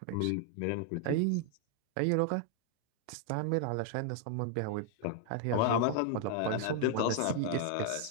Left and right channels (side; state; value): both; different; correlation 0.00